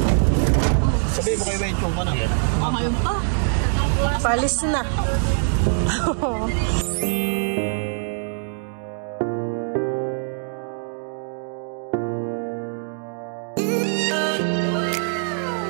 Sabihin mo kayo may chong pa na. Palis na.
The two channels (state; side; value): silent; left; digital silence